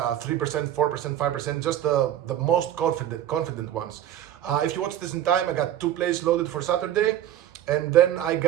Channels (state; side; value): quieter; left; 11.6 dB